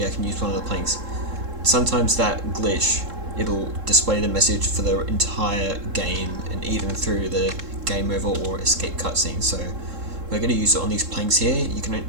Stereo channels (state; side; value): late; left; 3.7 ms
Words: I can use one of the planks. Sometimes that glitch, it'll display the message for the entire game and even through the game over or escape cutscene. So we're going to use it on these planks here.